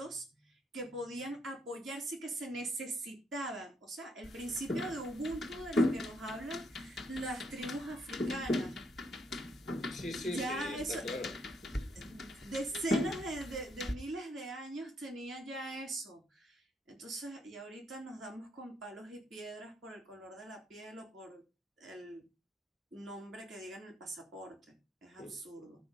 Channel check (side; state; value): both; normal; correlation 0.73